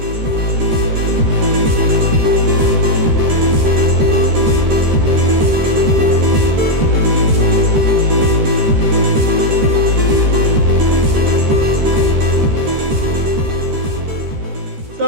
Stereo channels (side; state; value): left; late; 13 ms